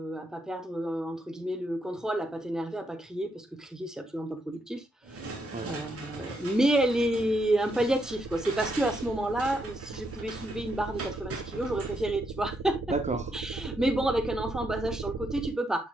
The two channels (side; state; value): both; normal; correlation 0.78